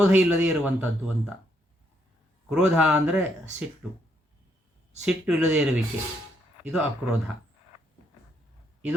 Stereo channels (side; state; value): both; normal; correlation 0.74